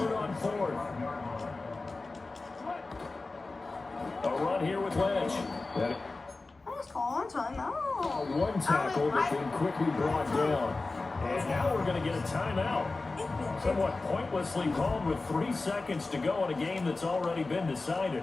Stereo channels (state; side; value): quieter; right; 3.5 dB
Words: on 4th. A run here with Lynch. One tackle that's been quickly brought down. And now we're going to get a timeout. Somewhat pointlessly called with 3 seconds to go in a game that's already been decided.